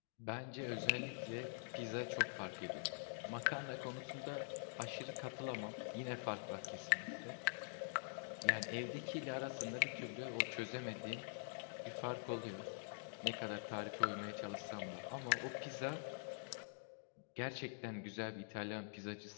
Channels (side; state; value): right; silent; digital silence